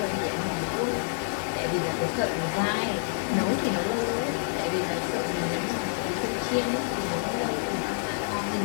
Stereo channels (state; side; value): silent; right; digital silence